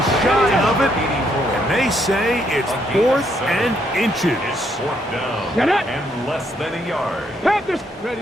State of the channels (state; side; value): normal; both; correlation 0.73